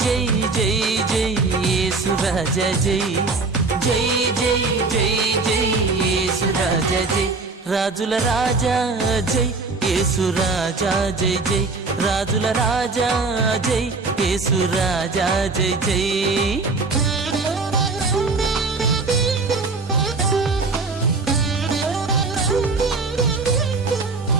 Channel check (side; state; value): left; quieter; 3.9 dB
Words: జై జై జై యేసు రాజా జై జై జై జై జై యేసు రాజా జై రాజుల రాజా జై యేసు రాజా జై జై రాజుల రాజా జై యేసు రాజా జై జై